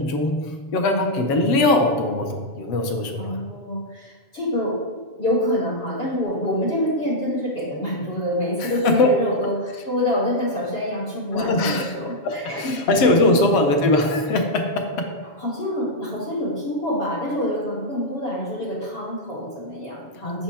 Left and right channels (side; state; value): right; late; 7.2 ms